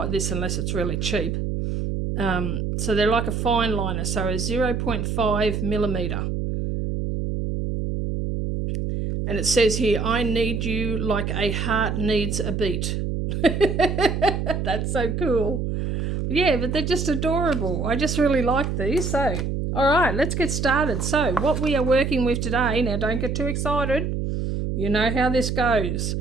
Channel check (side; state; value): right; noise; hum, 1 dB below the sound